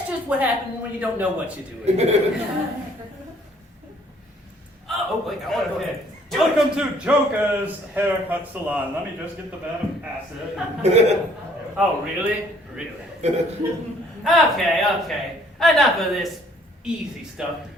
just what happens when you don't know what you're doing. Oh, wait, I want to go ahead. Welcome to Joker's Haircut Salon. Let me just get the vat of acid. Oh, really? Really? Okay. Enough of this easy stuff.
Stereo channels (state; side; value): normal; both; correlation 0.61